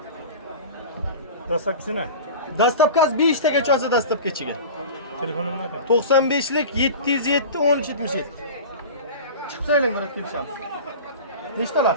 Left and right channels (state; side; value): inverted; both; correlation -0.34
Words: Dastlabkisini. Dastavkasi 5 tagacha olsa dastavkachiga. Telefonimni ayting. 95lik 707 13 77. Chiqsanglar murat kelishamiz. Nechta